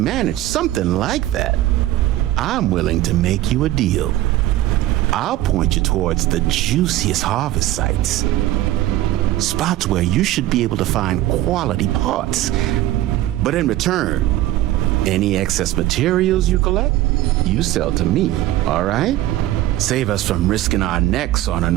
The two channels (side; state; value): left; quieter; 15.0 dB